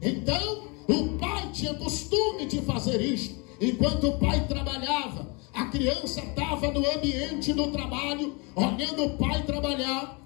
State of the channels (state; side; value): quieter; right; 30.3 dB